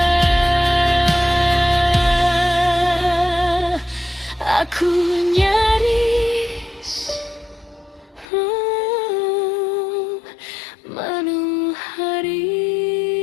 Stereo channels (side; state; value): right; drops out; at 8.2 s